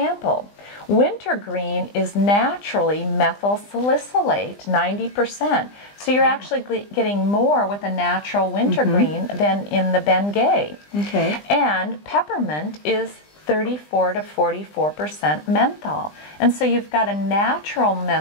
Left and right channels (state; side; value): late; right; 20 ms